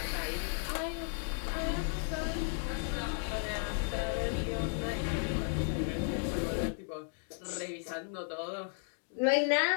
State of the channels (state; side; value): silent; right; 55 dB below the other